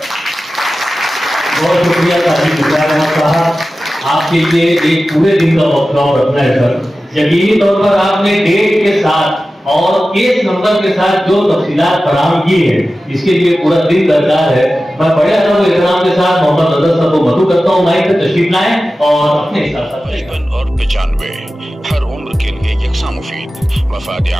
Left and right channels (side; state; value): both; normal; correlation 0.95